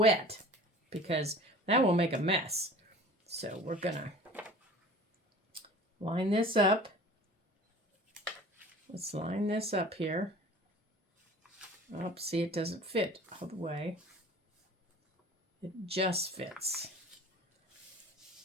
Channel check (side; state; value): both; normal; correlation 0.43